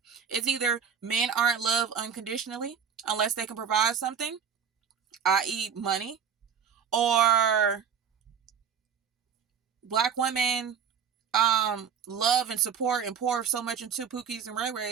It's either men aren't loved unconditionally unless they can provide something, i.e. money, or Black women love and support and pour so much into Pookies and Ray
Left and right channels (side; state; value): left; quieter; 7.3 dB